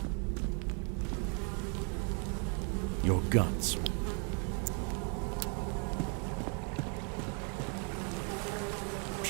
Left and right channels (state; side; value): quieter; left; 39.3 dB